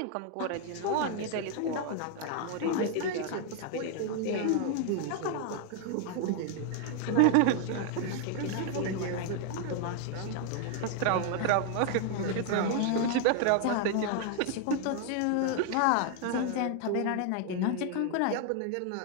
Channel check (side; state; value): both; different; correlation 0.00